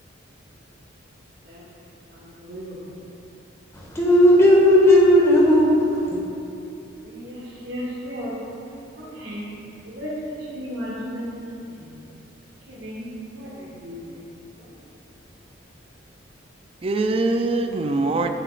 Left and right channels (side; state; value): both; normal; correlation 0.52